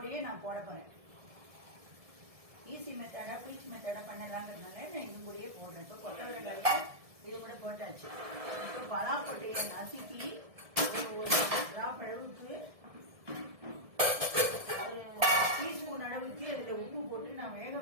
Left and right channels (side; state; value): left; late; 1.7 ms